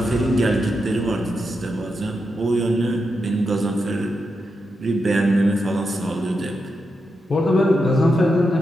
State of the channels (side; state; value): both; normal; correlation 0.86